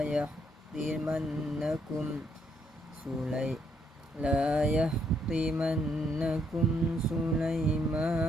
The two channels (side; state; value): both; normal; correlation 0.73